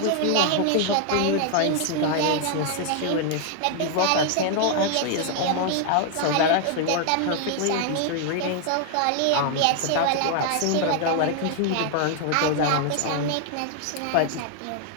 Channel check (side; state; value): both; different; correlation 0.00